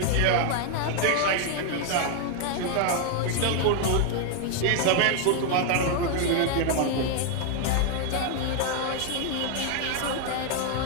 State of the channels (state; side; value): different; both; correlation 0.00